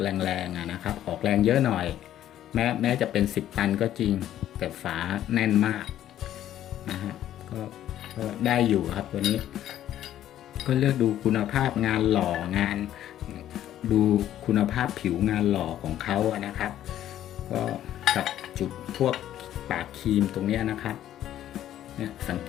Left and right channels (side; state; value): right; quieter; 12.0 dB